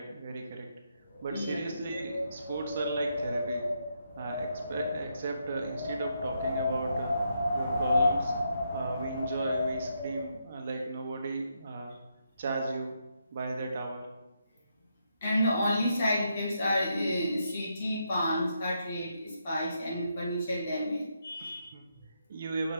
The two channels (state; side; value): inverted; both; correlation -0.80